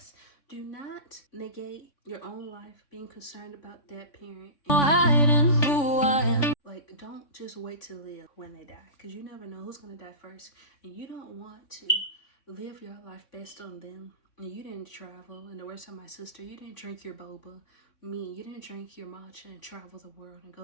do not negate your own life being concerned about that parent. Like, don't just wait to live when they die, because you never know who's gonna die first, and you don't want to live your life based on them. And you didn't travel, and the words of my sister, you didn't drink your boba. Me, you didn't drink your matcha and travel the world and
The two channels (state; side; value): late; right; 3.5 ms